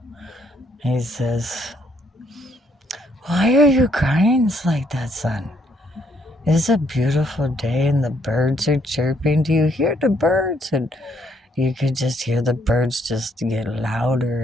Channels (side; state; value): both; normal; correlation 0.70